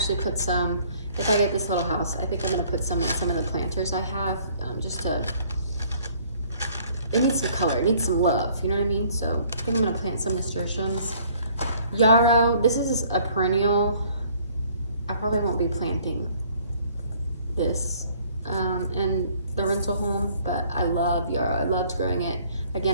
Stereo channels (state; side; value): inverted; both; correlation -0.58